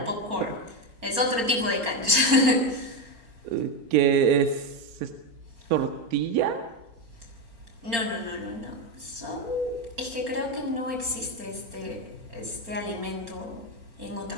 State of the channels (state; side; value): late; left; 4.3 ms